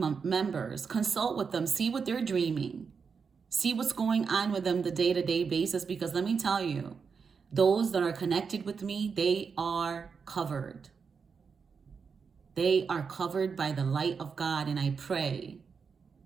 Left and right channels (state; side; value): quieter; left; 5.7 dB